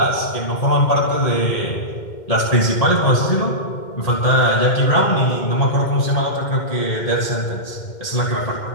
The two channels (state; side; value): late; right; 2.1 ms